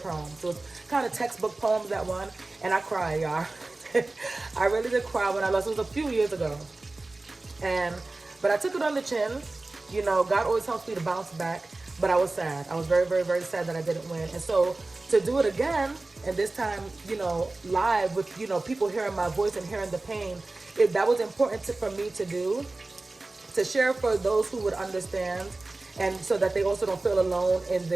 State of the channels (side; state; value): left; quieter; 3.1 dB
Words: poems, so it's kind of textbook poems that won, and I cried, y'all. I really did cry when I lost. It was a few years ago, but I took it on the chin. You know, God always helps me to bounce back. But I was sad. I was very, very, very sad that I didn't win. And so to do it again, and this time, you know, live with, you know, people hearing my voice and hearing the pain, that was important for me to do, to share for those who would understand. And so that they also don't feel alone in